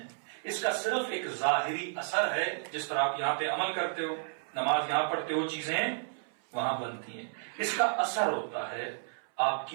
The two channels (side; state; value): left; silent; 56 dB below the other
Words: اس کا صرف ایک ظاہری اثر ہے. جس طرح آپ یہاں پہ عمل کرتے ہو، نماز یہاں پڑھتے ہو، چیزیں وہاں بنتی ہیں، اس کا اثر ہوتا ہے آپ